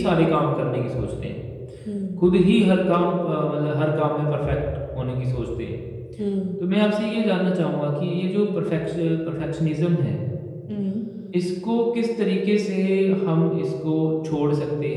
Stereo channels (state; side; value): identical; both; correlation 1.00